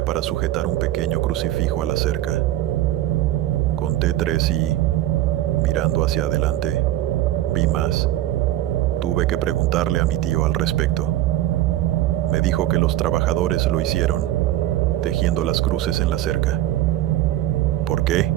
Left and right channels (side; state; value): left; quieter; 13.9 dB